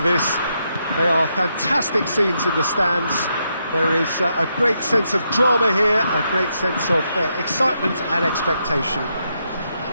They are fantastic scenes in the stands. There is a great sense of drama here, a great sense of excitement and expectation.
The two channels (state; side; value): inverted; both; correlation -0.80